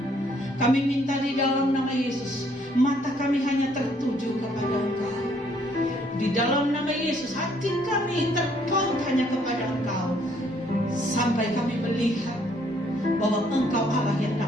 Kami minta di dalam nama Yesus, mata kami hanya tertuju kepada Engkau. Di dalam nama Yesus, hati kami terpaut hanya kepada Engkau, sampai kami melihat bahwa Engkau Allah yang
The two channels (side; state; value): both; normal; correlation 0.66